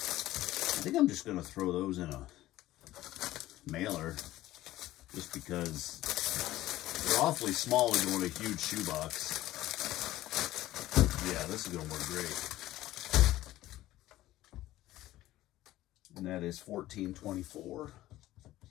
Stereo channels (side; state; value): right; quieter; 15.6 dB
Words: think I'm just going to throw those in a mailer just because they're awfully small to go in a huge shoebox. Yeah, this is going to work great. And that is $14.24.